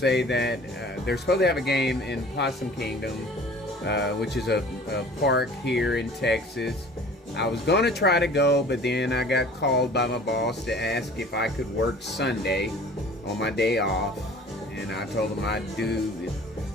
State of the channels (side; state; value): both; normal; correlation 0.47